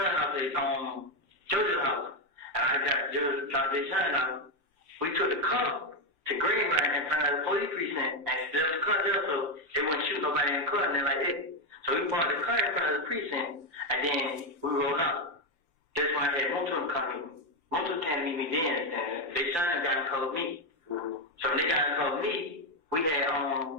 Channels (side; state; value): left; late; 5.8 ms